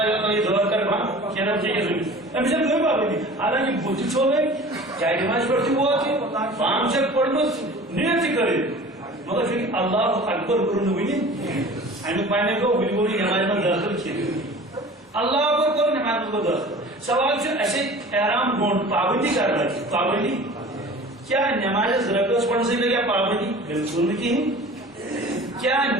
یا تو یہ دور کر بھا کیا نام چاہیے زمین اب جب کوئی بات نہیں حالانکہ بوتی چھوڑ گئی چاہے نماز پڑھتی ہوا تھی 5 سے پڑھنا نیت کرے مگر پھر اللہ اکبر کرنے ہوئی امیک معنی کو بلکل نماز میں داخل کیے اللہ اکبر کرو نماز میں داخل سوال سے ایسے احرام گھونٹ پابندی کر رہا ہے پابندی کیا نماز رکعت پڑھنے سے لگا پابندی بالکل نہیں کیا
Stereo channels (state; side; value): normal; both; correlation 0.42